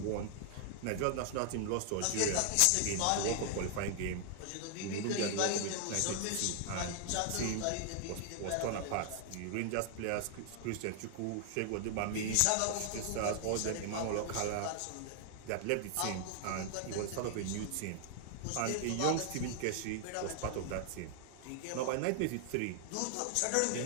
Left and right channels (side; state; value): both; different; correlation 0.00